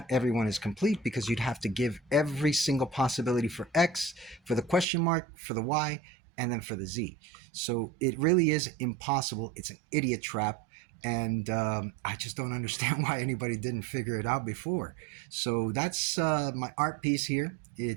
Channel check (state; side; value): drops out; left; at 4.9 s